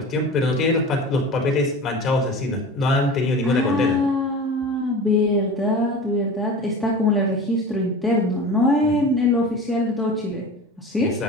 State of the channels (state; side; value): normal; both; correlation 0.34